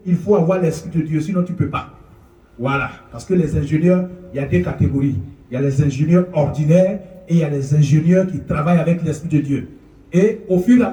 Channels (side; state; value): both; identical; correlation 1.00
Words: il faut avoir l'esprit de Dieu, sinon tu ne peux pas. Voilà, parce que les ingénieurs, il y a des catégories. Il y a les ingénieurs ordinaires et il y a les ingénieurs qui travaillent avec l'esprit de Dieu. Et au fur et à